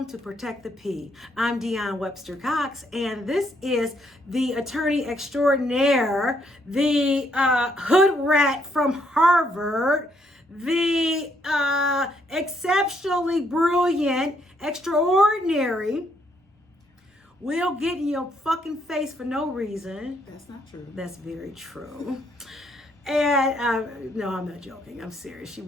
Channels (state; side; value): normal; both; correlation 0.72